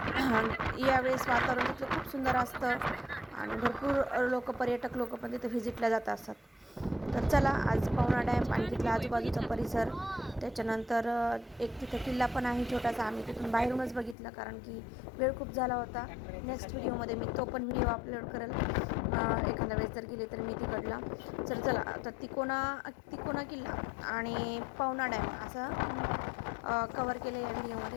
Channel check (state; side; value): drops out; right; at 14.2 s